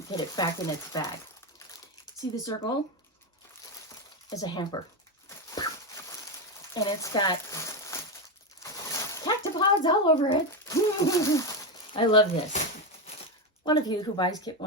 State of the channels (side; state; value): both; normal; correlation 0.11